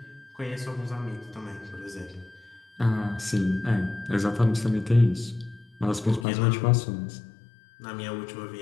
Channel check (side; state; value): right; drops out; at 6.2 s